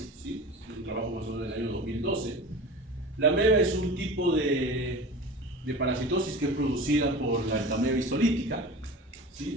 ¿sí? Es un trabajo más o menos del año 2012. La ameba es un tipo de parasitosis que es producida por la entameba histolítica,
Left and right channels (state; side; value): normal; both; correlation 0.34